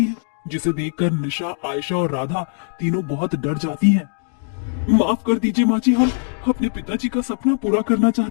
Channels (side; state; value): right; silent; 65 dB below the other